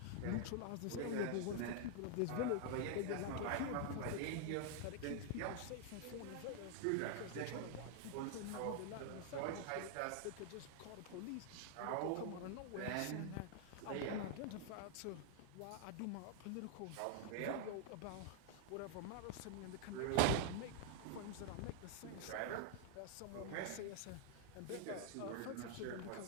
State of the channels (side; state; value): both; different; correlation 0.00